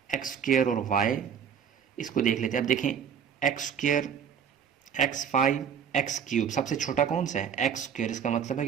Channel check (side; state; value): left; quieter; 7.7 dB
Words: एक्स स्क्वायर और वाई, इसको देख लेते हैं। अब देखें x square, x5, x cube, सबसे छोटा कौन सा है, एक्स स्क्वायर, इसका मतलब है